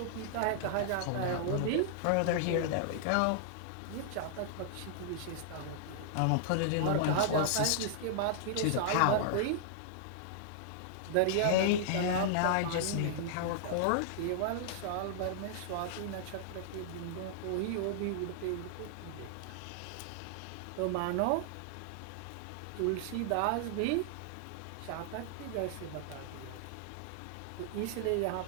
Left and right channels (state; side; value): different; both; correlation -0.01